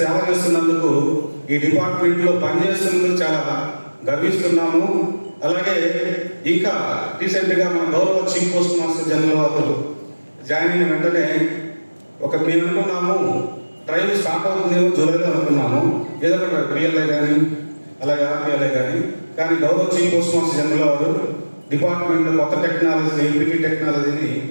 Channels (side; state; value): both; inverted; correlation -1.00